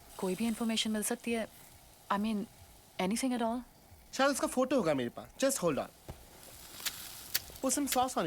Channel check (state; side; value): identical; both; correlation 1.00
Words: कोई भी इंफॉर्मेशन मिल सकती है? I mean anything at all? शायद उसका फोटो होगा मेरे पास। Just hold on. Put some sauce on